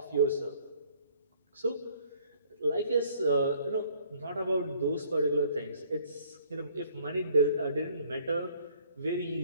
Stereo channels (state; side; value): inverted; both; correlation -0.60